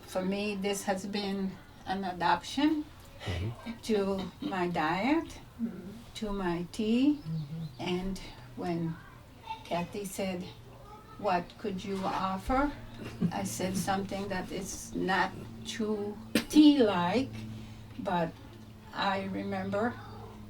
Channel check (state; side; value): identical; both; correlation 1.00